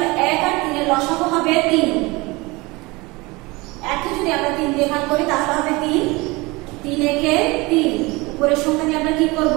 1 আর 3 এর লসাগু হবে 3। 1 কে যদি আমরা 3 দিয়ে ভাগ করি তাহলে হবে 3। 3 একে 3, উপরের সংখ্যা দিয়ে আমরা কি করব?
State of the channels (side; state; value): left; quieter; 23.6 dB